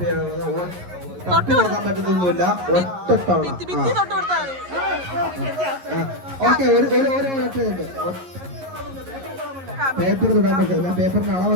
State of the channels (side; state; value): left; late; 11 ms